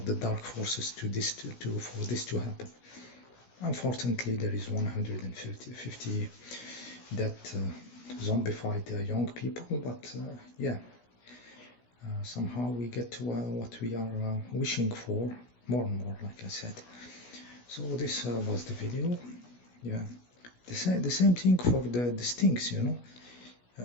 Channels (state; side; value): late; right; 16 ms